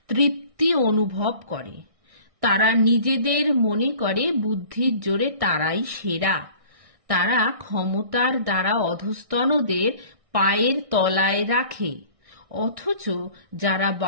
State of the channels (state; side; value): late; left; 1.6 ms